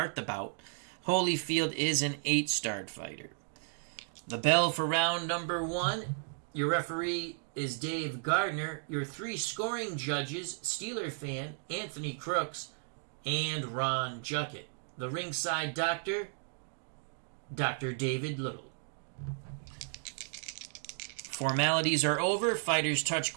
the bout. Holyfield is an 8-starred fighter. The bell for round number 1. Your referee is Dave Gardner. Your 3 scoring judges, Steeler fan, Anthony Crooks, and Ron Juckett. The ringside doctor, Dr. David Little. Formalities are over. Fighters touch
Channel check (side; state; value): left; silent; 55 dB below the other